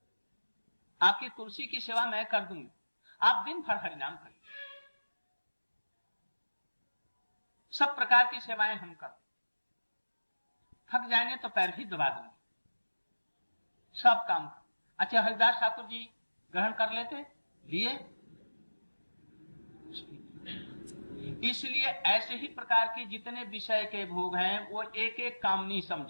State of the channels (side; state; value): both; inverted; correlation -1.00